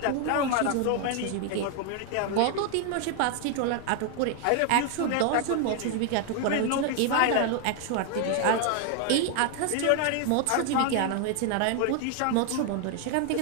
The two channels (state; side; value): different; both; correlation 0.00